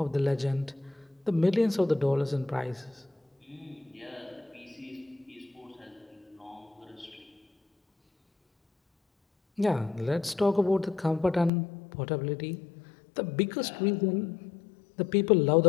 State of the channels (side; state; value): right; drops out; at 11.5 s